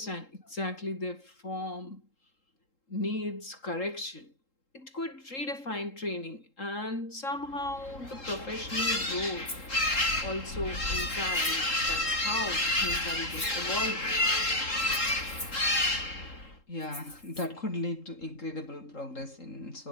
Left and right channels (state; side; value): late; right; 3.8 ms